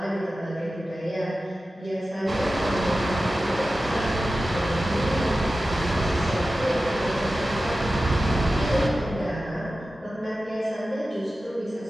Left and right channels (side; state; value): both; normal; correlation 0.94